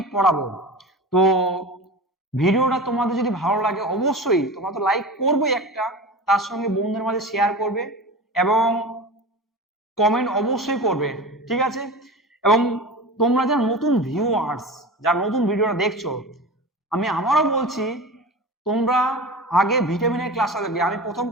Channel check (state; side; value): normal; both; correlation 0.31